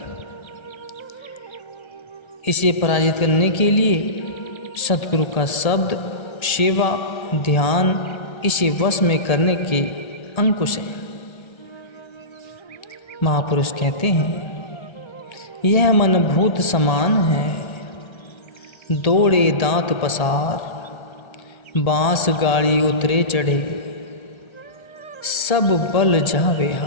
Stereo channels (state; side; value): late; right; 1.3 ms